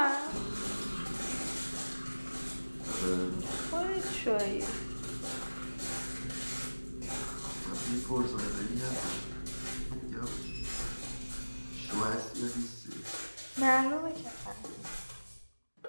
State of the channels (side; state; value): both; inverted; correlation -1.00